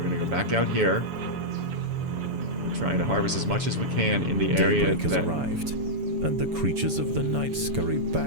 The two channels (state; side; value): late; left; 7.1 ms